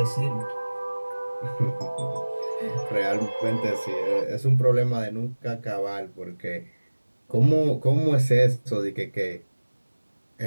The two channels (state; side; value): inverted; both; correlation -1.00